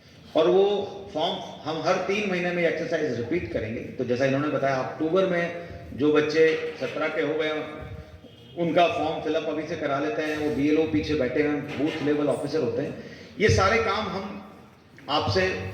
और वो फॉर्म हम हर 3 महीने में एक्सरसाइज रिपीट करेंगे. तो जैसा इन्होंने बताया, अक्टूबर में जो बच्चे 17 के हो गए उनका फॉर्म फिलअप अभी से करा लेते हैं. वो BLO पीछे बैठे हैं, बूथ लेवल ऑफिसर होते हैं. ये सारे काम हम आपसे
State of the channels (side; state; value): both; identical; correlation 1.00